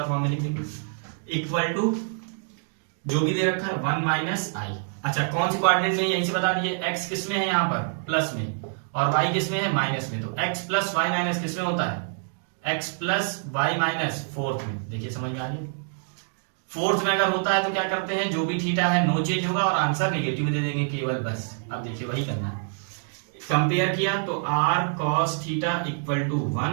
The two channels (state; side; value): silent; left; digital silence